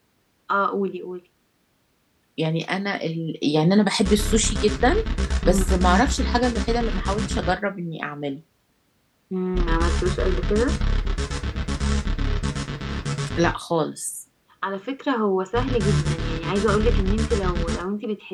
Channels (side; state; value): both; identical; correlation 1.00